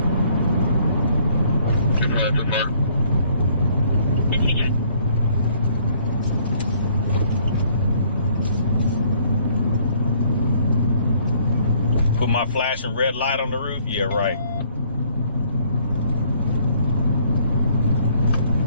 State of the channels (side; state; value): both; inverted; correlation -0.63